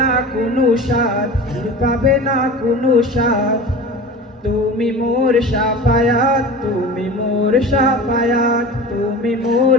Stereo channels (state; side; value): normal; both; correlation 0.35